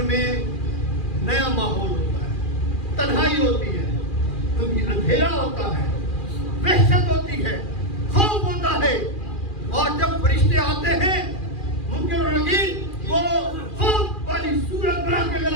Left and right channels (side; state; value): right; late; 2.4 ms